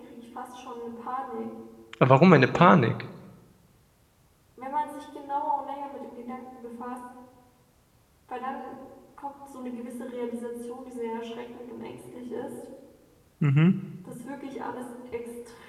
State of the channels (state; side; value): identical; both; correlation 1.00